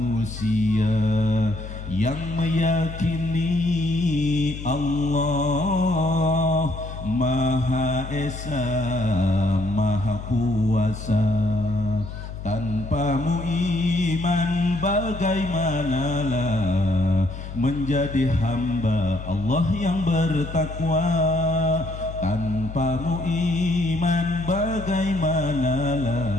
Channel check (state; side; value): noise; left; hum, 10 dB below the sound